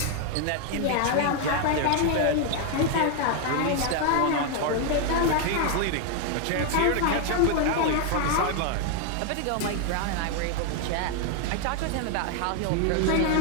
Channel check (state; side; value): different; both; correlation 0.00